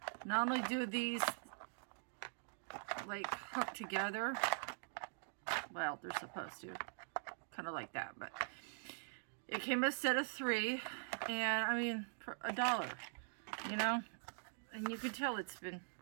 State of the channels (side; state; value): left; silent; digital silence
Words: not only do these like hook together, well, they're supposed to, kind of like that, but it came a set of 3, and I mean, for $1, you know, and you can tell it's been